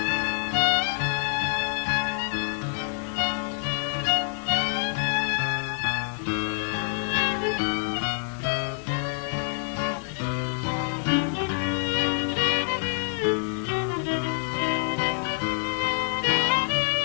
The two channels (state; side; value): silent; right; digital silence